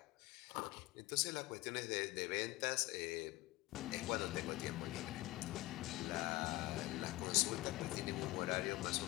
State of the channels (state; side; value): quieter; right; 19.4 dB